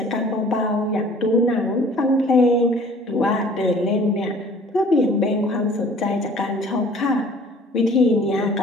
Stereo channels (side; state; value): both; normal; correlation 0.52